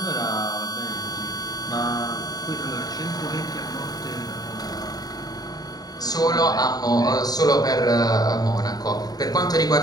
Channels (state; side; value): late; right; 0.19 ms